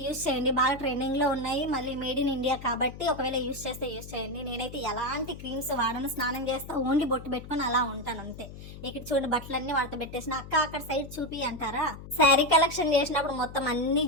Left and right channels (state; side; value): noise; left; hum, 14 dB below the sound